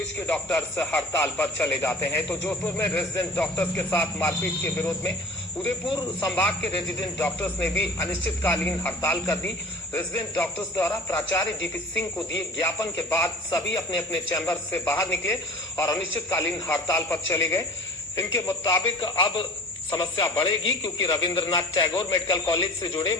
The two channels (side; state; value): both; normal; correlation 0.42